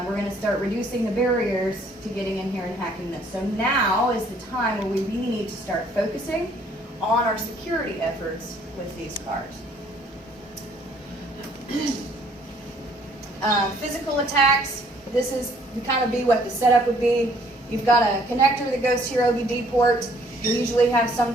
we're going to start reducing the barriers to getting in here and hacking this. So now is the time where we really need to start focusing on our security efforts with these cars. Physical attacks, this is kind of be what the setup would be. You've got a connector that goes to your OBD port. You usually have some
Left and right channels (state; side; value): normal; both; correlation 0.62